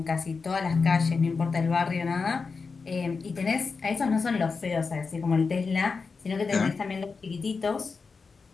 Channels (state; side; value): quieter; right; 4.7 dB